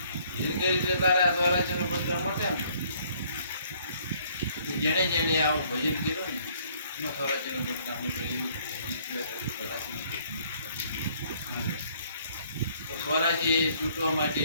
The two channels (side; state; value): both; inverted; correlation -0.63